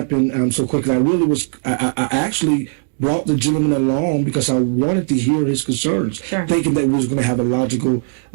so quickly. I actually brought the gentleman along because I wanted to hear his concerns, thinking that we was going to have a logical,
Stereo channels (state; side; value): silent; left; digital silence